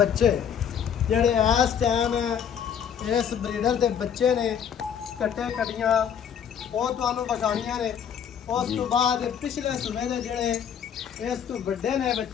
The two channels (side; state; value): right; quieter; 8.3 dB